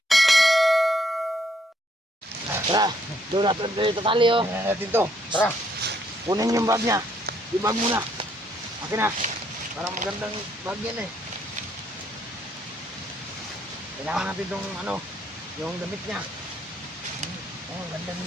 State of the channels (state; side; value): normal; both; correlation 0.70